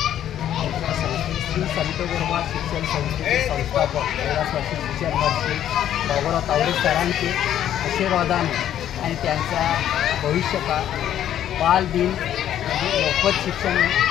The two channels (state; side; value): quieter; right; 11.0 dB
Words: श्री संत गोरोबा शिक्षण संस्थेचे संस्थापक कैलासवासी विचारवासी बाबूराव तावरे सरांचे आशीर्वादाने आणि त्यांचा भविष्यकाळ बालदिन म्हणजे मोफत शिक्षण